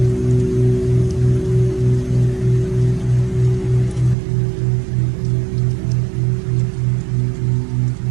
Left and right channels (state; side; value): drops out; left; at 4.2 s